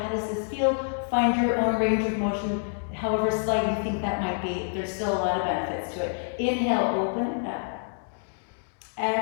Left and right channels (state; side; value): silent; right; digital silence